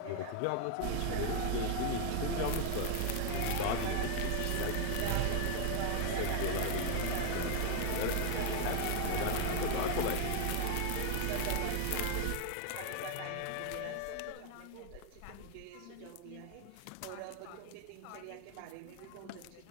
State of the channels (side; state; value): both; different; correlation 0.00